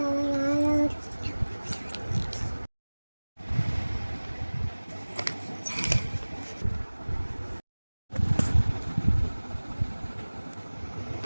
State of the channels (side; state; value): both; inverted; correlation -1.00